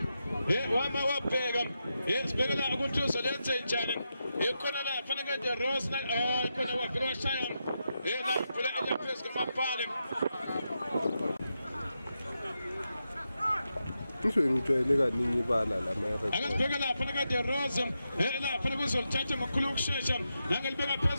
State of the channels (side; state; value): both; inverted; correlation -0.87